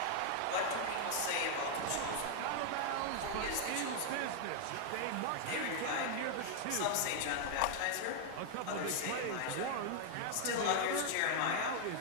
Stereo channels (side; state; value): both; different; correlation 0.00